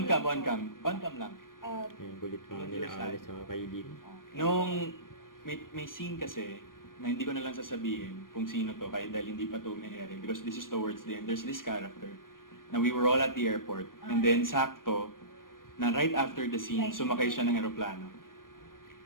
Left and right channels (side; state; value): right; late; 0.91 ms